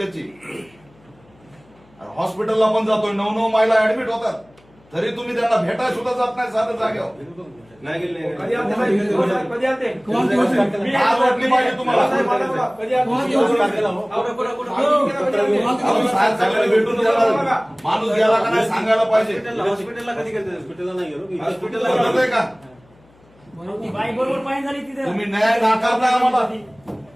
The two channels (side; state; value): left; noise; hum, 30 dB below the sound